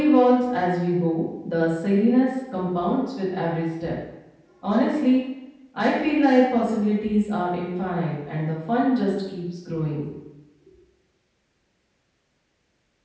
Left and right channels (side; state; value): both; identical; correlation 1.00